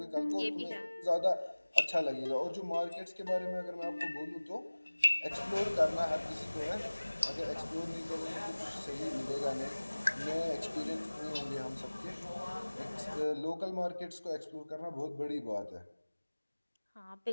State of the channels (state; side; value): inverted; both; correlation -1.00